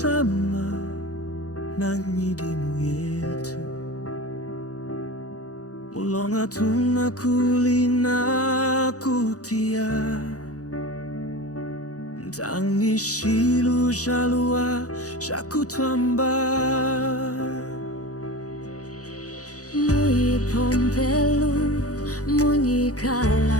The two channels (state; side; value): late; right; 0.67 ms